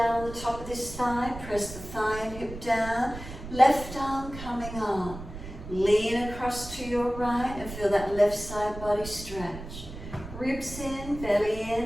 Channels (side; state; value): right; noise; rumble, 11 dB below the sound